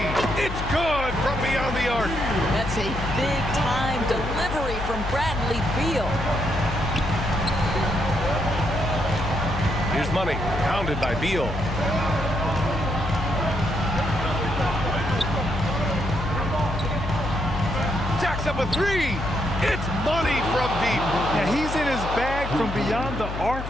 It's good from beyond the arc. That's a big-time delivery from Bradley Beal. Here's Money, pounded by Beal. Jacks up a 3. It's Money from deep. Yeah, he's in his bag from beyond the arc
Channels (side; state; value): left; noise; hum, 6 dB below the sound